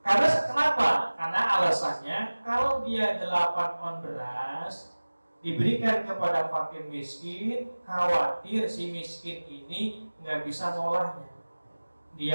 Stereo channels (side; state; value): both; inverted; correlation -1.00